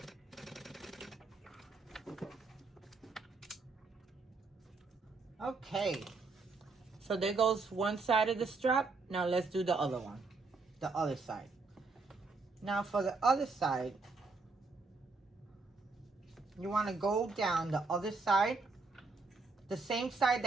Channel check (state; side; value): quieter; left; 4.0 dB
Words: Okay, so there goes one side of the strap. Now let's do the other one, the other side. Now for the other side, you want to go down the other side. The same side